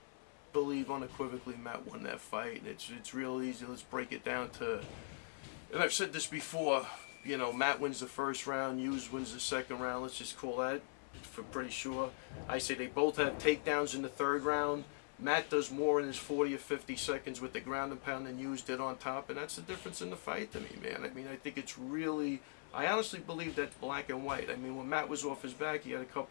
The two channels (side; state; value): right; silent; 50 dB below the other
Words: believe unequivocally Matt won that fight, and it's real easy. Let's break it down to, and I've said this before, you know, Matt wins the first round, Hughes wins the second round. Let's just call that for pretty sure. I say they both have takedowns in the third round. Matt does more in his 40 or 50 seconds with the ground and pound than Hughes did on top, and that's the difference in the fight to me, man. I mean, I think it's really, I honestly believe that's black and white. I mean, when Matt was off his back, he had a